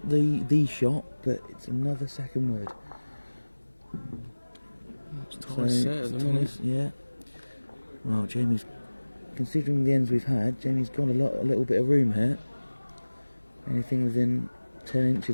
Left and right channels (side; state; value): both; inverted; correlation -1.00